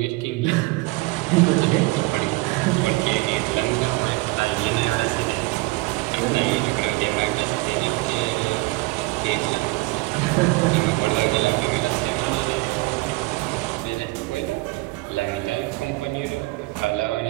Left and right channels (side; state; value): left; quieter; 22.6 dB